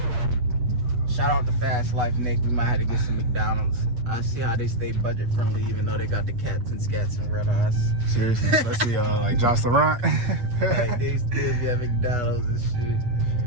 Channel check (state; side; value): late; left; 8.2 ms